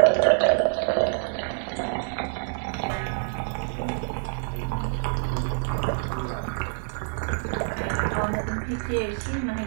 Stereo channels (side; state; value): left; silent; digital silence